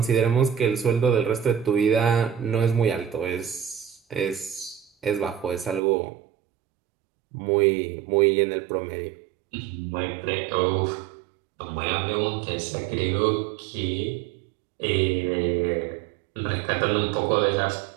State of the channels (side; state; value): left; drops out; at 5.8 s